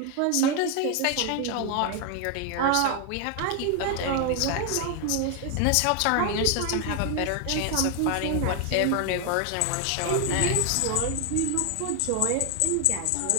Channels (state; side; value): different; both; correlation 0.01